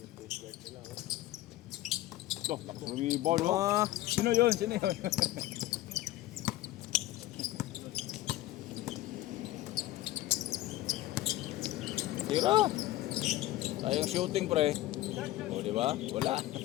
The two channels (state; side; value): quieter; right; 15.7 dB